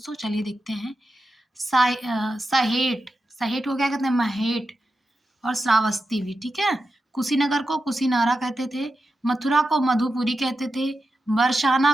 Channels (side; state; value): both; normal; correlation 0.90